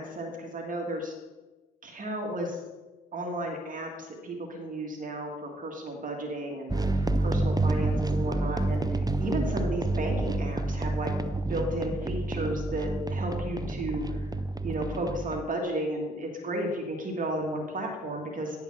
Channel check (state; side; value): normal; both; correlation 0.71